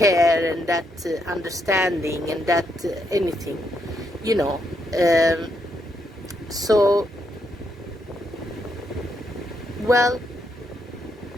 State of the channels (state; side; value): normal; both; correlation 0.78